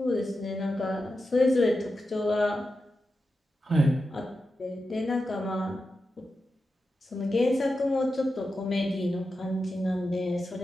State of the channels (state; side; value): normal; both; correlation 0.90